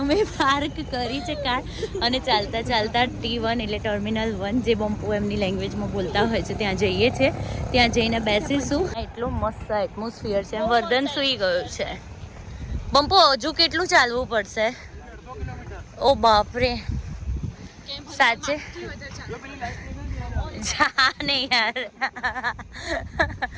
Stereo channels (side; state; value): both; identical; correlation 1.00